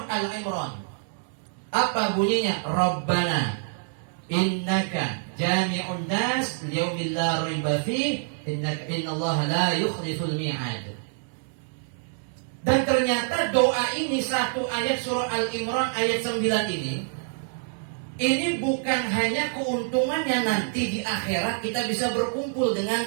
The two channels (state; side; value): silent; left; digital silence